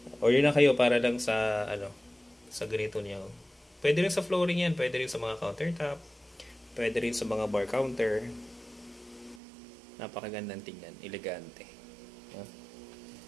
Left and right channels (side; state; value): left; drops out; at 9.4 s